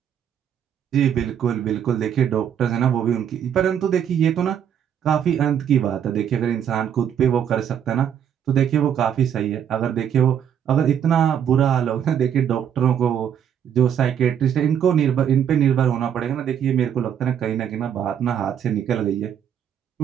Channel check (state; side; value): quieter; left; 8.9 dB